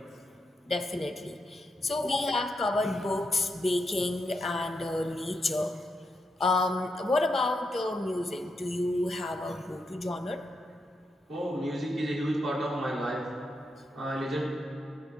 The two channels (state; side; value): normal; both; correlation 0.83